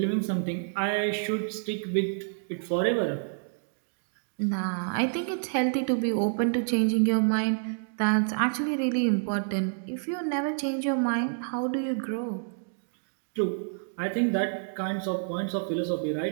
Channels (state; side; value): silent; left; digital silence